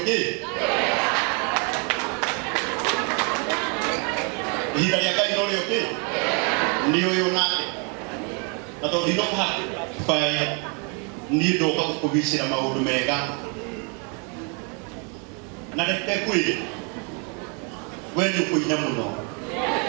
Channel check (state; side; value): quieter; left; 35.9 dB